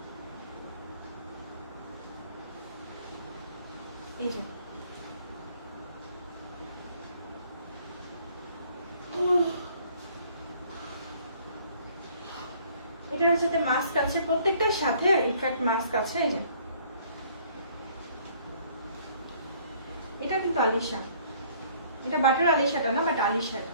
এই যে এটার সাথে মাস্ক আছে, প্রত্যেকটার সাথে ইনফ্যাক্ট মাস্ক আছে। এই যে এটা কিন্তু আলিশা, এটা বাটার আলিশাটা না, বাট আলিশা এটা।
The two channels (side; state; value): both; inverted; correlation -0.59